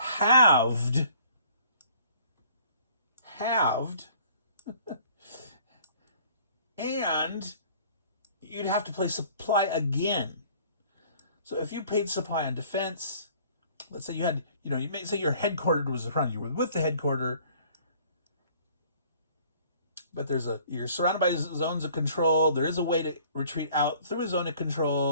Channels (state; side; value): inverted; both; correlation -0.54